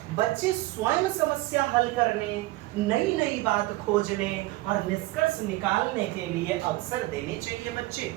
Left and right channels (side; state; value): left; quieter; 19.4 dB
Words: बच्चे स्वयं समस्या हल करने, नई नई बात खोजने और निष्कर्ष निकालने के लिए अवसर देने चाहिए बच्चे